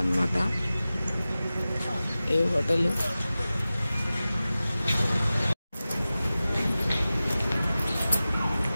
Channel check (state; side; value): inverted; both; correlation -0.96